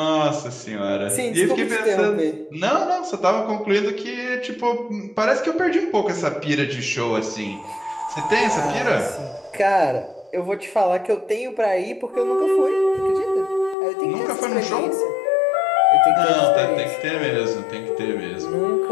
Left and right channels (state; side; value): drops out; right; at 13.8 s